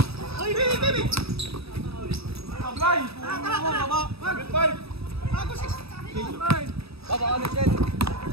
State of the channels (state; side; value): late; left; 0.77 ms